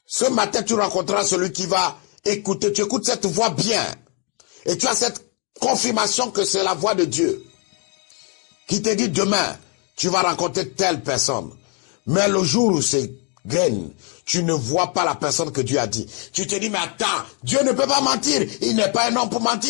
ce matin, tu rencontreras celui qui va écouter. Tu écoutes cette voix bien. Et tu as cette confirmation que c'est la voix de Dieu qui te dit demain, tu vas rencontrer telle personne. Mais le jour où c'est graine, tu ne vois pas la personne que Dieu a dit. Tu te dis, mais attends, Dieu ne peut pas mentir. Il n'est pas un homme pour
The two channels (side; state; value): right; quieter; 36.2 dB